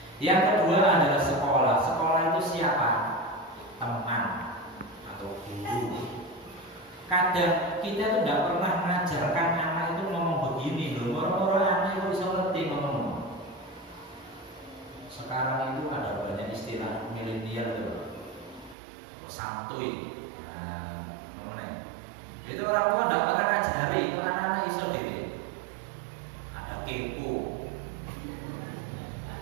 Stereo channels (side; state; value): left; drops out; at 18.8 s